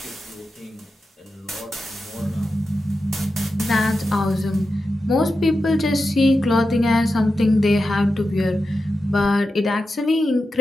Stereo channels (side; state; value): both; normal; correlation 0.90